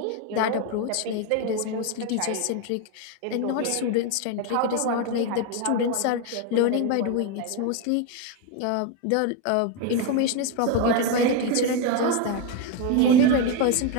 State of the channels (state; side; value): different; both; correlation 0.02